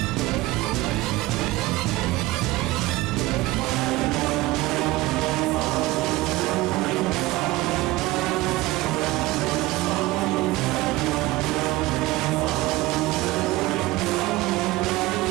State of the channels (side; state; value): left; quieter; 19.0 dB